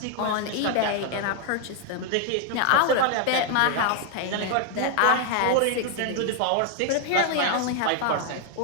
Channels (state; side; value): different; both; correlation 0.01